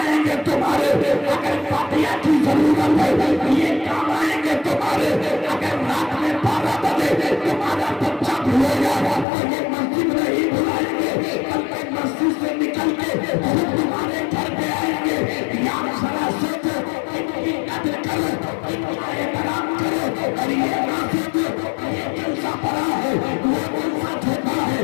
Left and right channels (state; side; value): drops out; right; at 9.2 s